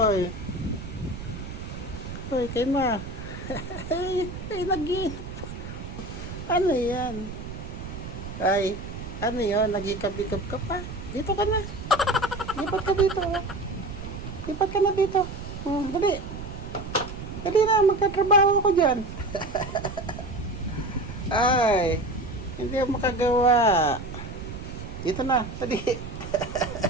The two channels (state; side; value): noise; right; rumble, 9 dB below the sound